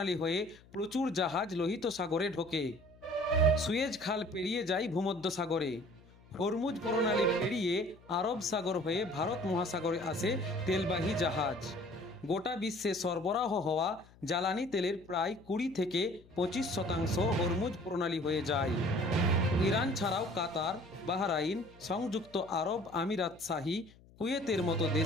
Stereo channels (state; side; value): noise; left; hum, 25 dB below the sound